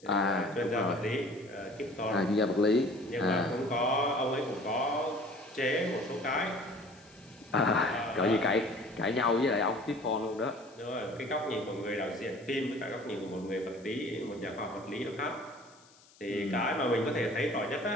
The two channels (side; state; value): left; noise; hiss, 27 dB below the sound